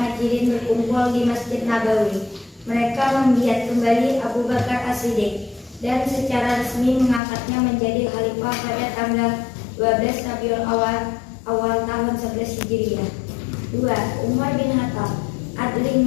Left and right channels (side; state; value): right; drops out; at 7.2 s